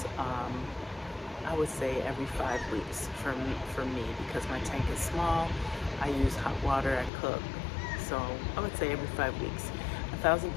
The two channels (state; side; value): drops out; right; at 7.1 s